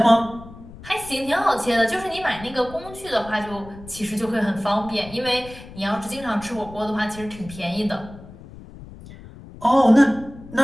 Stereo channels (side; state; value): left; noise; rumble, 17 dB below the sound